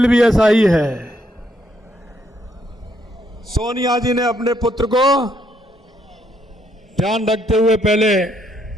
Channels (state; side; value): normal; both; correlation 0.73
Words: भी ऐसा ही है। सोनिया जी ने अपने पुत्र को ध्यान रखते हुए पहले